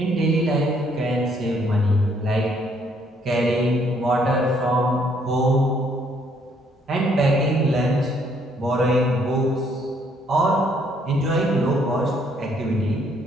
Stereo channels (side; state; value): both; normal; correlation 0.67